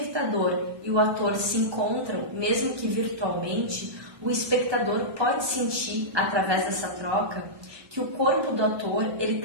e o ator se encontram, mesmo que virtualmente, o espectador pode sentir, através dessa troca, que o corpo do ator ele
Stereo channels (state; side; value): late; left; 1.2 ms